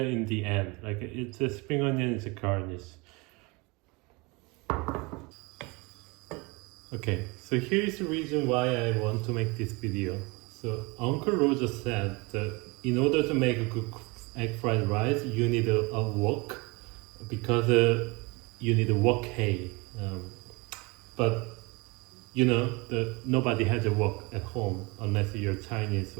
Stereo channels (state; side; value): quieter; left; 26.4 dB